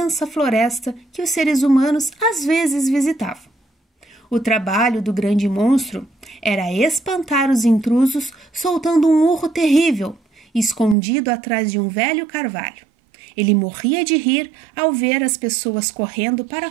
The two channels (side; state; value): left; drops out; at 11.0 s